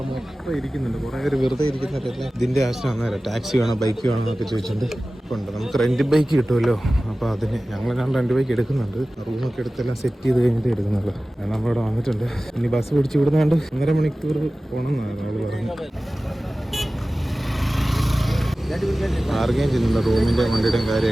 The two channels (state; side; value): normal; both; correlation 0.96